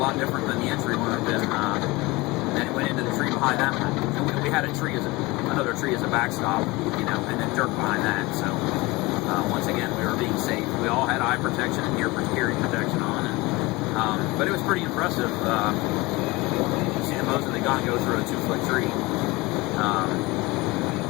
different than the entry wound, and then it went into the tree behind that one. And we had another tree as a backstop, and then dirt behind that. So once again, we were being safe. We all had eye protection and hearing protection on, and but it was pretty impressive. You see the Mosin Nagant go through a 2-foot tree.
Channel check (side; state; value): right; quieter; 22.5 dB